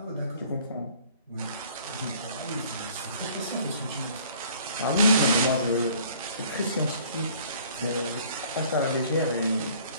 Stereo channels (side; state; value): both; inverted; correlation -0.55